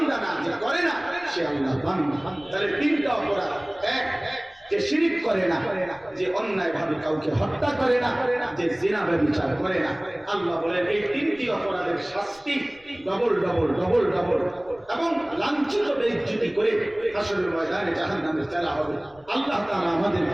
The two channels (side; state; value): left; noise; rumble, 29 dB below the sound